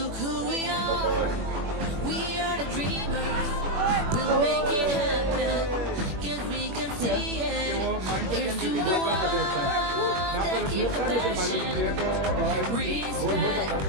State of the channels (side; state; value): left; late; 21 ms